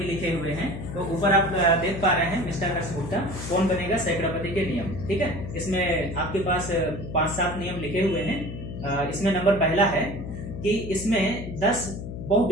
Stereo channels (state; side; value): noise; left; hum, 8 dB below the sound